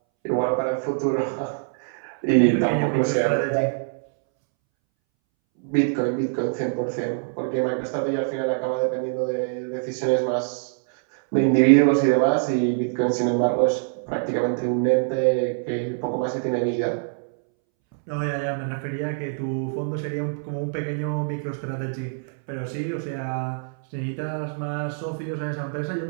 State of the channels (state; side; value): silent; left; 62 dB below the other